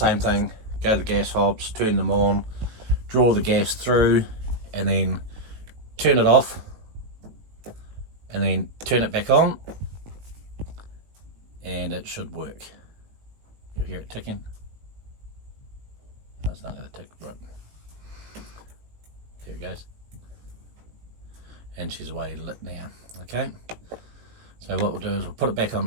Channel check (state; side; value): late; left; 18 ms